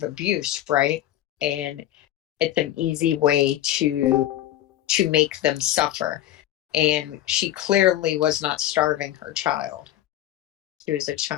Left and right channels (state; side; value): quieter; right; 13.1 dB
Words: abuse, right? And it's an easy way to make them suffer. And she clearly was not starving her child. She was a